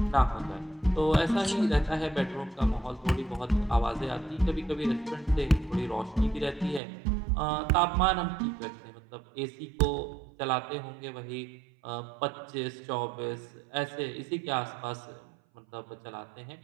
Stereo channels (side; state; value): left; drops out; at 6.8 s